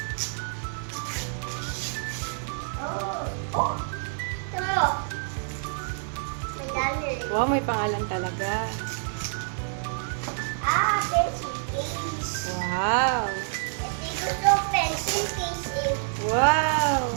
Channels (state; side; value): silent; left; 60 dB below the other